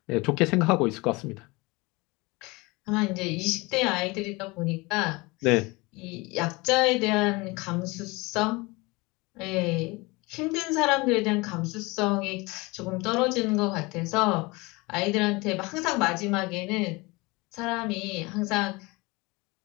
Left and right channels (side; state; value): right; quieter; 24.5 dB